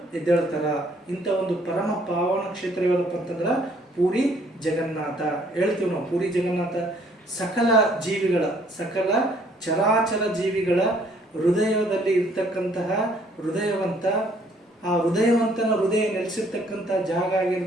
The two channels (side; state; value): both; normal; correlation 0.63